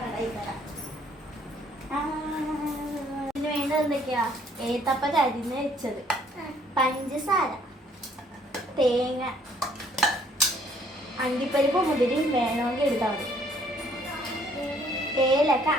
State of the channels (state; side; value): normal; both; correlation 0.63